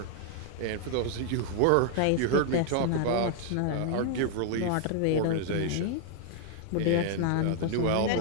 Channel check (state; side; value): different; both; correlation 0.00